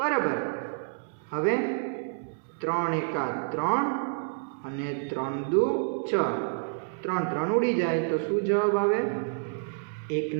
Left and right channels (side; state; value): left; silent; 59 dB below the other